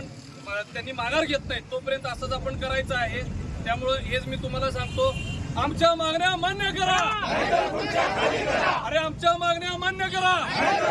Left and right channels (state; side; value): identical; both; correlation 1.00